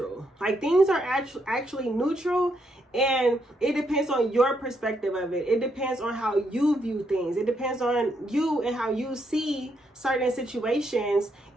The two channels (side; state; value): both; normal; correlation 0.77